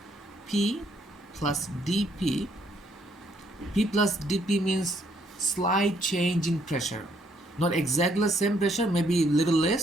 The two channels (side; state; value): both; normal; correlation 0.69